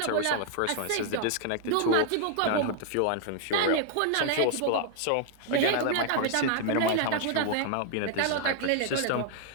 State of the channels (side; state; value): both; different; correlation 0.00